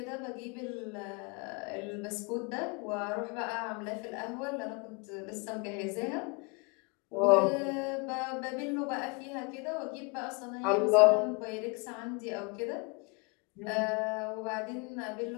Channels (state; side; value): quieter; right; 31.2 dB